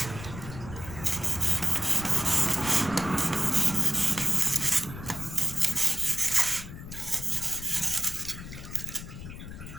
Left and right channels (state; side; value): noise; left; rumble, 11 dB below the sound